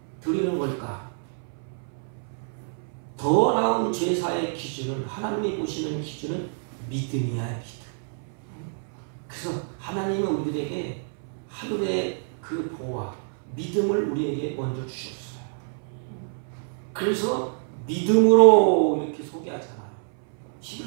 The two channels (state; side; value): silent; left; 60 dB below the other